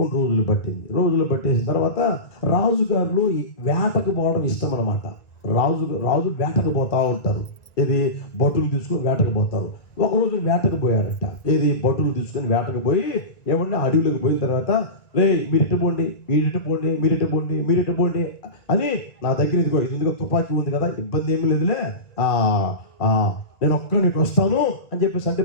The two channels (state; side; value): late; right; 1.9 ms